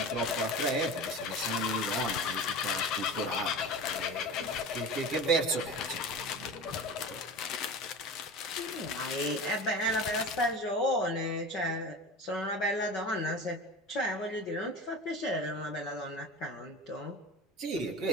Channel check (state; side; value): normal; both; correlation 0.32